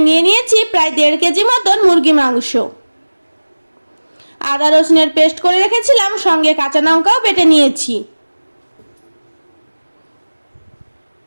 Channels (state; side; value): inverted; both; correlation -1.00